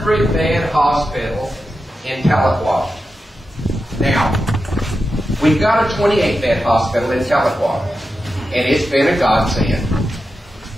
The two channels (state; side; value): normal; both; correlation 0.90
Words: hospital in Tahlequah. Now, we've got a 28-bed hospital in Tahlequah, and it's been a godsend,